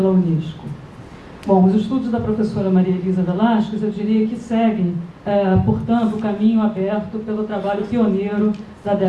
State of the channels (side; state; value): both; identical; correlation 1.00